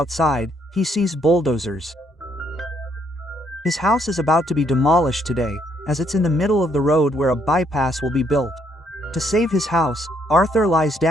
he sees bulldozers. His house is about to be demolished today, as it's in the middle of the road where a bypass will be built. To save his house, Arthur lies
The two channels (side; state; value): both; normal; correlation 0.71